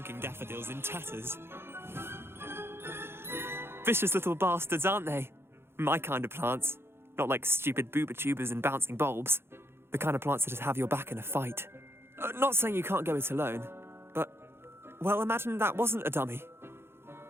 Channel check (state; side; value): late; left; 0.11 ms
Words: daffodils in tatters. Vicious little bastards, aren't they? My kind of plants. Not like stupid booba tubers and bouncing bulbs. The kind of plants that have your back in a fight. Not saying you can't go it alone, but, well, imagine that wasn't a dummy.